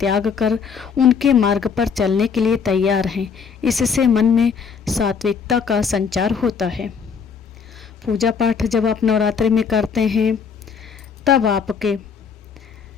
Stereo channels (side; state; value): right; quieter; 6.2 dB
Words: कर उनके मार्ग पर चलने के लिए तैयार हैं। इससे मन में सात्विकता का संचार होता है। पूजा पाठ जब आप नवरात्रि में करते हैं तब आपके